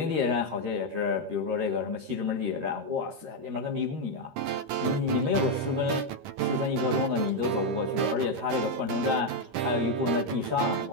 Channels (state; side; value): late; left; 13 ms